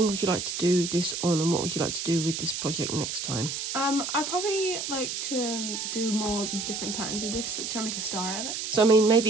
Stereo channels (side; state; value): right; noise; hiss, 4 dB below the sound